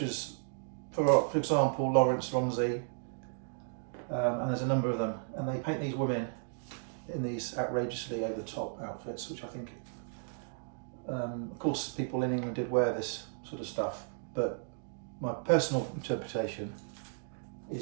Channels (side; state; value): left; silent; digital silence